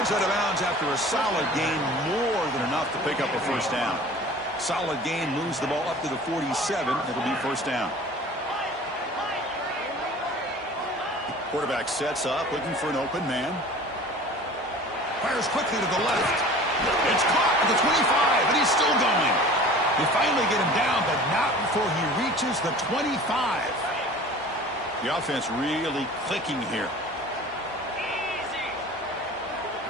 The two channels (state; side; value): normal; both; correlation 0.43